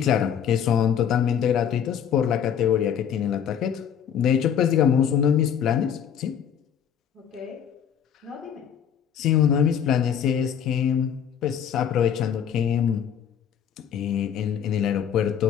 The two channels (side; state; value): right; quieter; 8.4 dB